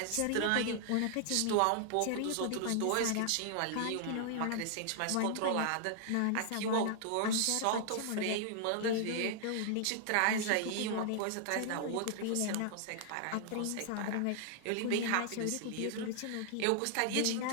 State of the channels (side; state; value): both; different; correlation 0.00